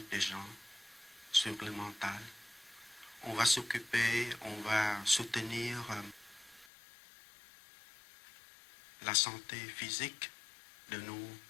des gens, sur le mental. On va s'occuper, on va soutenir la santé physique de nos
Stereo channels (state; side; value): drops out; right; at 6.7 s